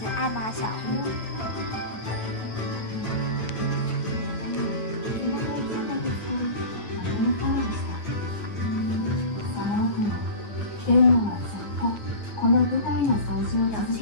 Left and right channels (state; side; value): late; right; 9.1 ms